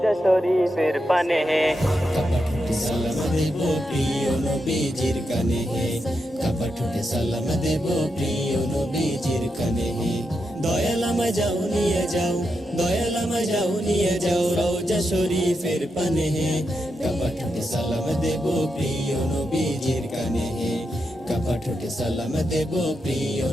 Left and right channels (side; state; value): both; normal; correlation 0.85